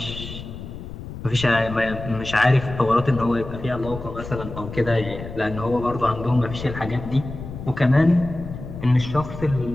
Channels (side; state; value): left; noise; rumble, 10 dB below the sound